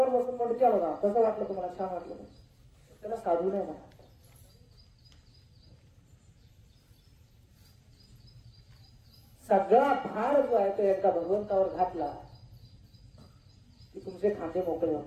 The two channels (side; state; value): both; identical; correlation 1.00